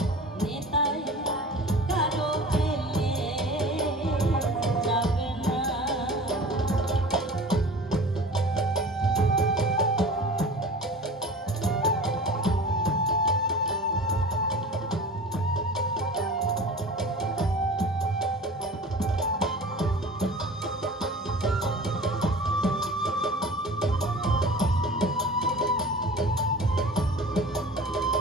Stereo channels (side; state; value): both; normal; correlation 0.39